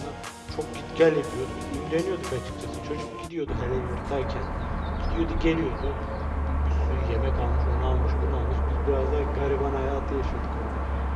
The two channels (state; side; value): identical; both; correlation 1.00